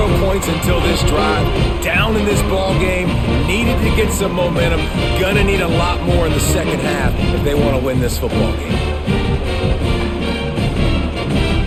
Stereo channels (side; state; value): both; identical; correlation 1.00